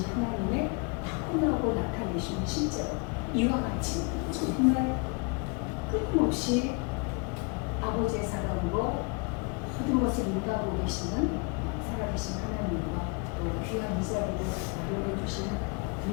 하나님의 타고나고 나타내신 실제로 이와 같이 정말 끊임없이 아버지의 사랑으로 모든 것을 인도하고 계시는 살아계신 하나님과 또 귀한 이 자리를 마련해 주신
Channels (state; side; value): quieter; right; 32.5 dB